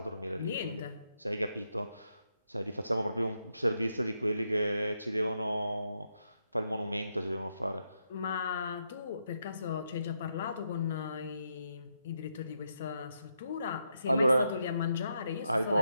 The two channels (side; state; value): both; inverted; correlation -0.81